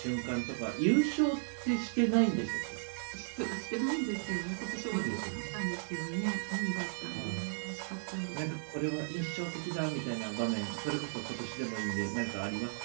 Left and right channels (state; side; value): silent; left; digital silence